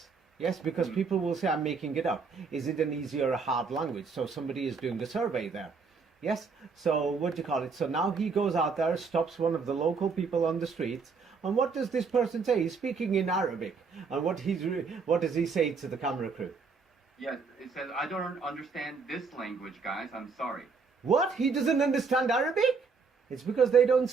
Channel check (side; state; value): left; quieter; 5.0 dB